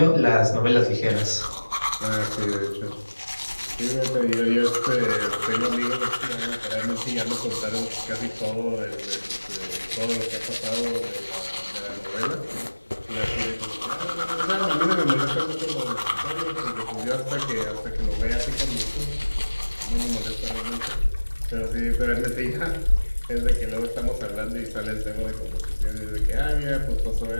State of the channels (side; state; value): both; inverted; correlation -1.00